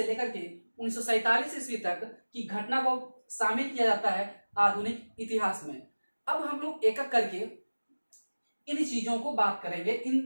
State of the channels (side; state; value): both; inverted; correlation -1.00